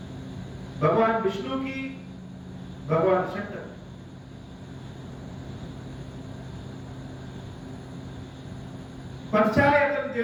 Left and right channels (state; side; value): identical; both; correlation 1.00